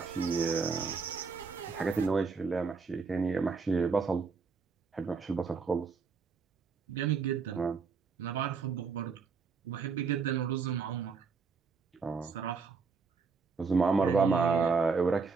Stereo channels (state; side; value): quieter; left; 5.0 dB